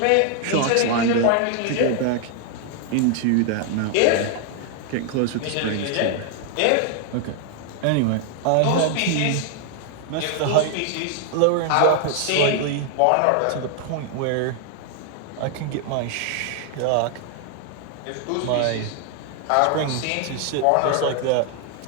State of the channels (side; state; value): both; different; correlation 0.00